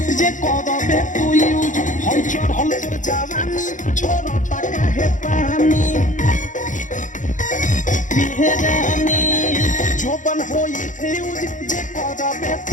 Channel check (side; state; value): right; late; 0.37 ms